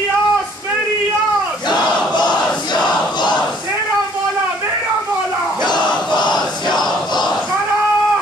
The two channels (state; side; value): normal; both; correlation 0.59